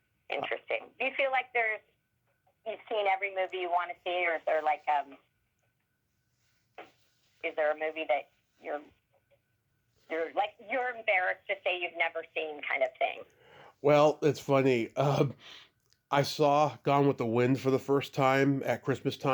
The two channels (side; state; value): both; identical; correlation 1.00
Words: interesting. Do you feel like you've seen every movie you want to see, or is there is there a movie that you're embarrassed to say you've never seen, kind of thing? Well, it's funny. I saw Gone with the Wind for the first time at Christmas